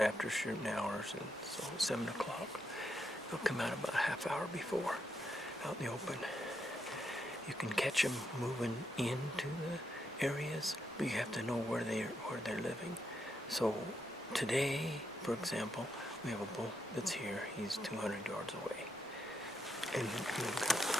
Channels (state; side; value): normal; both; correlation 0.80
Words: shooting hours, and so 7 o'clock they'll come out about a half hour before, out in the open. You can catch them moving into the areas, but you have to know where they're living. So today, for example, we have a bull that's here. He's 200 yards away. And we've